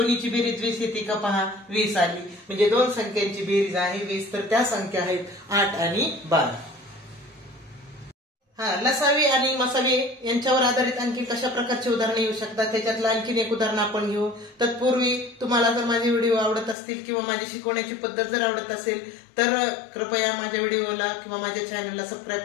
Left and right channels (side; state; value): right; drops out; at 16.8 s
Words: बेरीज 20 येते का पहा? 20 आली. म्हणजे दोन संख्यांची बेरीज आहे 20. तर त्या संख्या आहेत 8 आणि 12. लसावी आणि मसावी यांच्यावर आधारित आणखी कशा प्रकारचे उदाहरणे येऊ शकतात त्याच्यातलं आणखीन एक उदाहरण आपण घेऊ. तत्पूर्वी तुम्हाला जर माझे व्हिडिओ आवडत असतील किंवा माझी शिकवण्याची पद्धत जर आवडत असेल तर कृपया माझ्या व्हिडिओला किंवा माझ्या चॅनलला